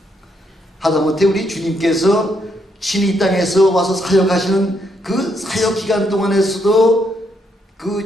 하다못해 우리 주님께서 친히 이 땅에서 와서 사역하시는 그 사역 기간 동안에서도 그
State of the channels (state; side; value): normal; both; correlation 0.76